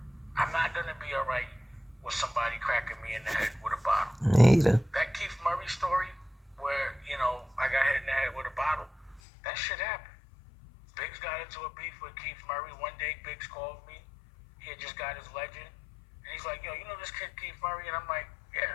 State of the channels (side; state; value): right; drops out; at 9.2 s